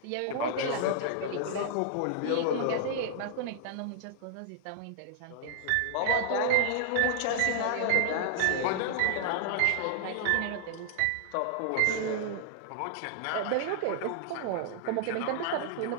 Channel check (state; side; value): different; both; correlation -0.01